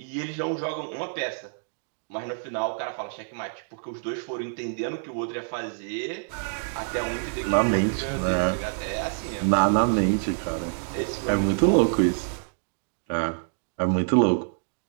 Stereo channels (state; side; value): silent; left; digital silence